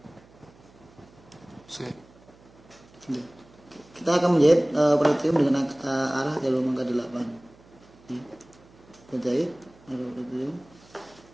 Kita akan menjahit pretium dengan arah jarum angka 8. Kita jahit arah pretium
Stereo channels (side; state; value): right; noise; hum, 26 dB below the sound